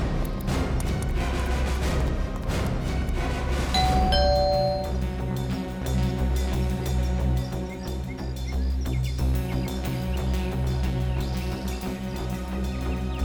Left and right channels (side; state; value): both; identical; correlation 1.00